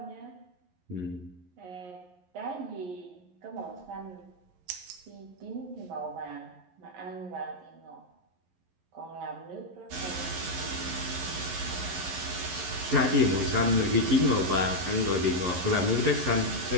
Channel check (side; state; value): left; late; 11 ms